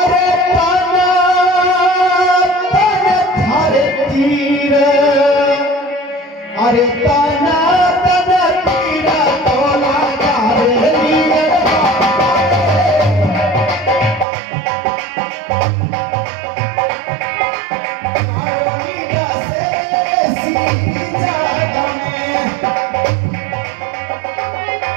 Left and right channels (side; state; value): left; drops out; at 14.2 s